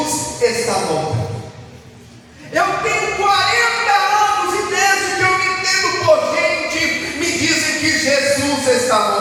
está voltando. Eu tenho 40 anos e desde que eu me entendo por gente, me dizem que Jesus está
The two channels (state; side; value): identical; both; correlation 1.00